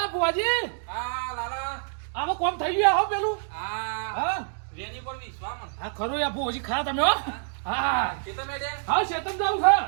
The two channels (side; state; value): left; silent; digital silence